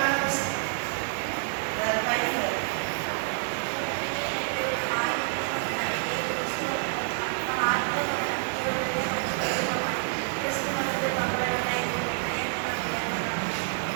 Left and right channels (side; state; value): left; silent; digital silence